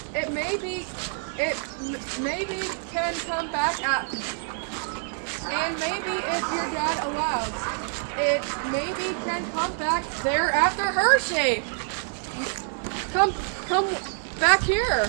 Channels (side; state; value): left; silent; 61 dB below the other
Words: maybe can come back at. And maybe if your dad allows, it maybe can come back there after Hershey. Come back here.